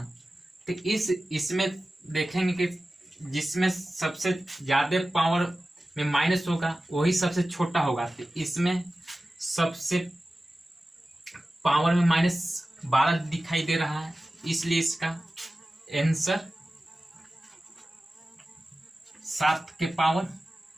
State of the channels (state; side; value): normal; both; correlation 0.95